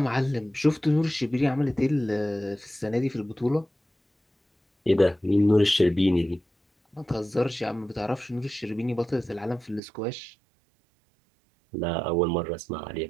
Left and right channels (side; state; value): left; drops out; at 9.8 s